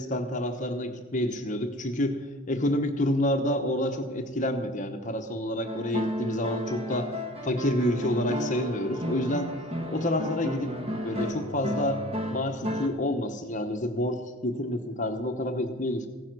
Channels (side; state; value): both; normal; correlation 0.44